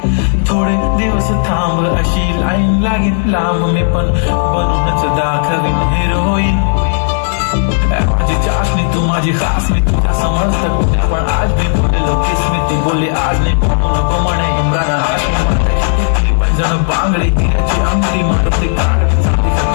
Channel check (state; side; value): silent; right; digital silence